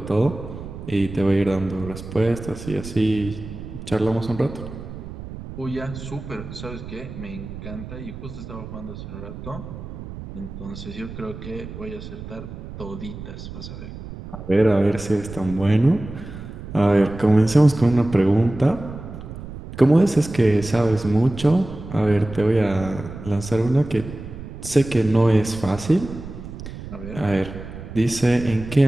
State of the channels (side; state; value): right; noise; rumble, 11 dB below the sound